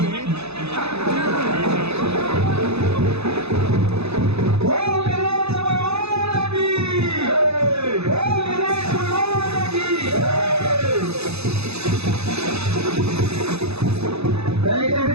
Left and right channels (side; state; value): left; late; 0.79 ms